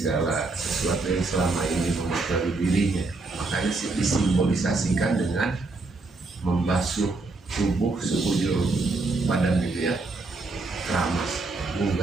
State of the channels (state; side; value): quieter; left; 3.5 dB